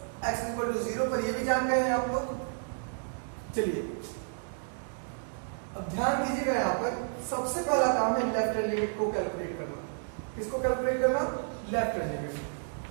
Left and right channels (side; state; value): left; silent; digital silence